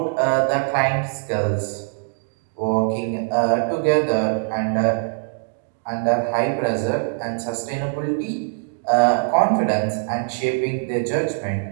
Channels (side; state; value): left; silent; digital silence